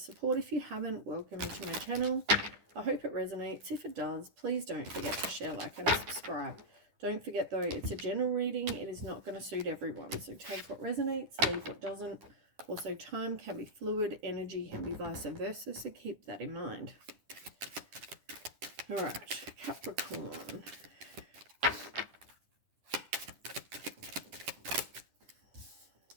If you haven't, welcome to my channel. I hope it resonates. If it does, please don't forget to share, like and subscribe. Don't forget though, it's a general reading. It is not going to suit everyone. So take what resonates, leave what doesn't. Also, time can be fluid, energy can be vice versa, so keep that in mind. All right, Capricorn.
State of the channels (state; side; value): late; left; 10 ms